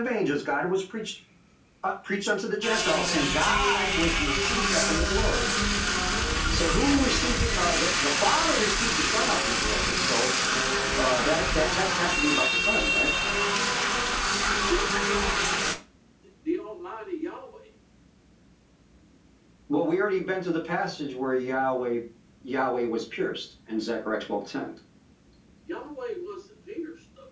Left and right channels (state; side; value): identical; both; correlation 1.00